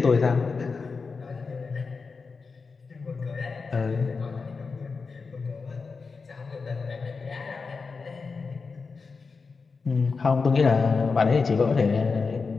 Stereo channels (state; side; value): quieter; right; 4.7 dB